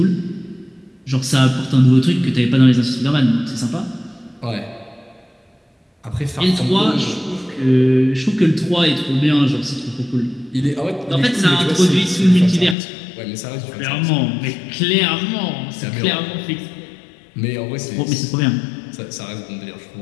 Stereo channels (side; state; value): right; drops out; at 12.8 s